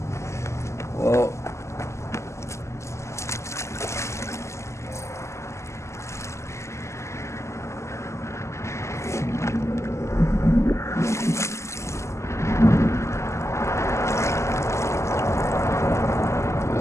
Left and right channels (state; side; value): late; right; 0.13 ms